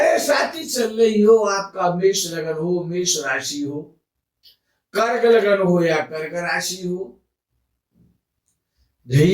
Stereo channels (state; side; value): identical; both; correlation 1.00